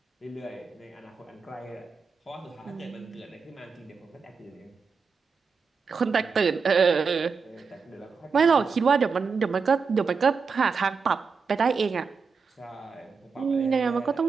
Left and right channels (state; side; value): quieter; left; 5.2 dB